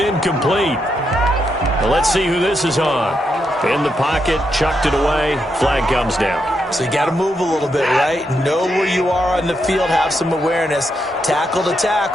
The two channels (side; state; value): both; normal; correlation 0.82